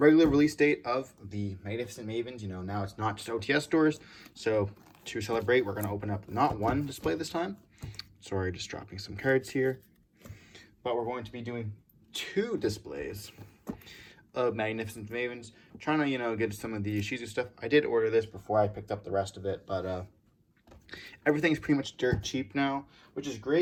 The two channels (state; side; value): identical; both; correlation 1.00